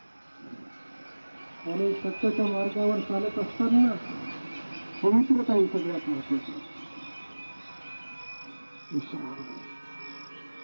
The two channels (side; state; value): both; inverted; correlation -1.00